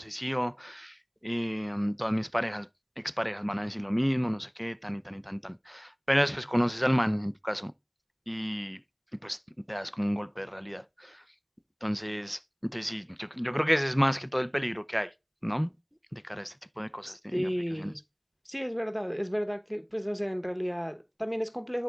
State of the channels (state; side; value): identical; both; correlation 1.00